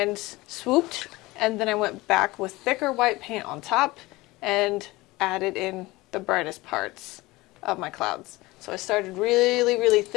swooped, and then I went back with thicker white paint on top and added in the brightest parts of my clouds. So I started really, really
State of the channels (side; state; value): right; quieter; 20.6 dB